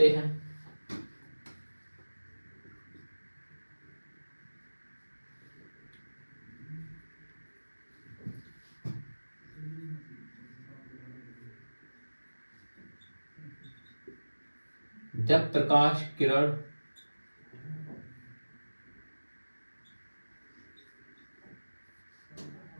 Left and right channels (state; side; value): inverted; both; correlation -1.00